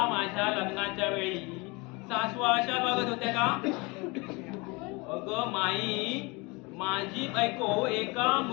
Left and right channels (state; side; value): quieter; right; 26.7 dB